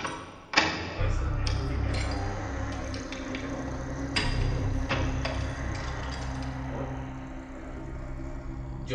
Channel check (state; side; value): identical; both; correlation 1.00